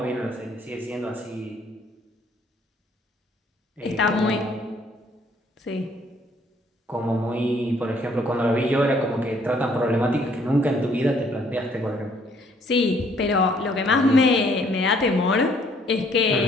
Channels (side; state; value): both; normal; correlation 0.64